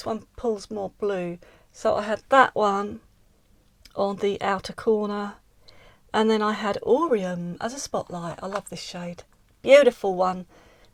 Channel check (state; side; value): identical; both; correlation 1.00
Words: one pulls more blue. So I had that one on the outer corner, and then I had Aureum as a spotlight. I love this shade. Beautiful one.